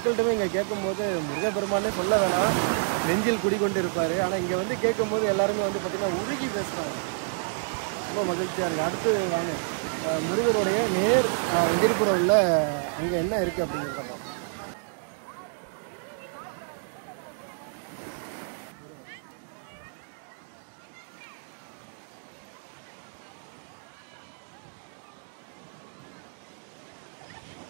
இங்கே கேட்கும்போது முருகப்பெருமானே சொல்ல வேணாம், நெஞ்சில் குடிக்கொண்டு இருப்பார். ஆனால் இங்கே வந்து கேட்கும்போது எல்லாருமே வந்து பார்த்திங்கன்னா உருகி பேசுகிறாங்க. ரொம்ப மகிழ்ச்சியாக இருக்குது. அடுத்து வாங்க முருகனுடைய நேர் எதிர்ப்புறவில் அங்கே என்ன இருக்குது அப்படிங்கிறத.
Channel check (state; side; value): silent; left; digital silence